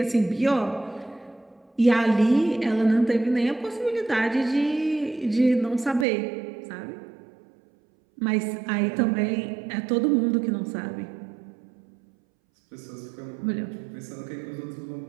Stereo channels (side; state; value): left; drops out; at 6.1 s